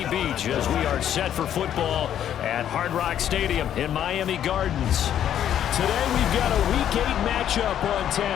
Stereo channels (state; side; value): quieter; right; 10.3 dB